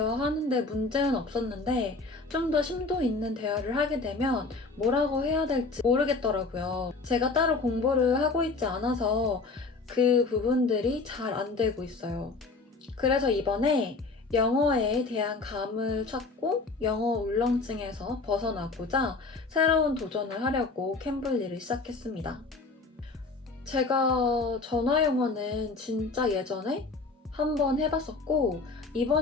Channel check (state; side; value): quieter; right; 3.9 dB